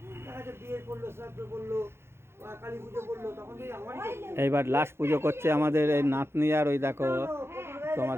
দেখা যাচ্ছে বিয়ে করলো, শ্রাদ্ধ করলো, কালী পুজো করলো, তখন থেকে আমারই করলো। এইবার লাস্ট পুজো করছে আমাদের এই নাতনি, আর ওই দেখো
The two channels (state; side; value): late; left; 0.12 ms